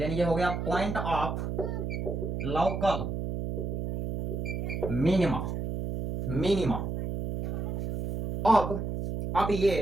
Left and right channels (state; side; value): noise; right; hum, 3 dB below the sound